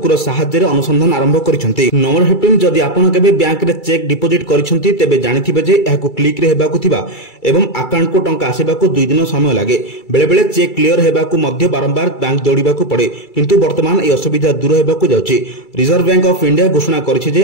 साहाय्य अनुसंधान आरंभ करिसेंती। नंबर 15 जदि आपण केबे बैंक रे चेक डिपोजिट करिसेंती तेबे जानिथिबे जे एहाकु क्लिक रे हेबाकु थिबा एवं अकाउंट को टंका आसीबाकु 2 दिन समय लागे। बेले बेले चेक क्लियर हेबाकु मध्य बारंबार बैंक दौड़ाकू पड़े, किंतु वर्तमान यह असुविधा दूर हेबाकु जाउछि। रिजर्व बैंक ऑफ इंडिया घोषणा करिछि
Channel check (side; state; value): right; late; 2.3 ms